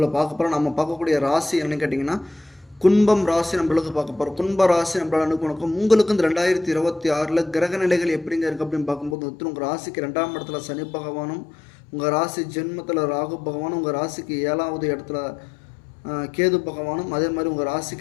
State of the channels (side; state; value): right; drops out; at 9.2 s